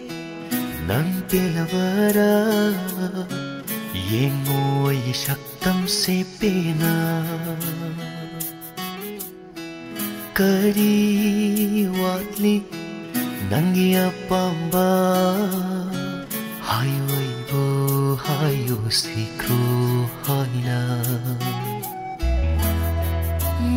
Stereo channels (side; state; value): both; identical; correlation 1.00